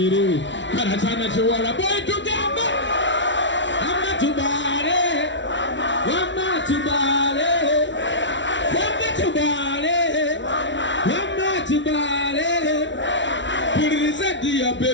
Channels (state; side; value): late; right; 0.54 ms